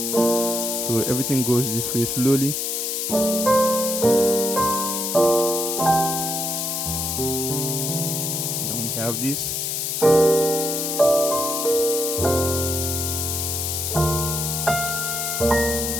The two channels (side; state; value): left; noise; hiss, 1 dB below the sound